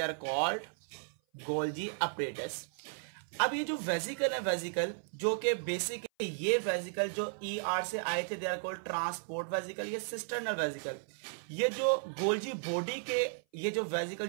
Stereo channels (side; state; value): left; silent; 55 dB below the other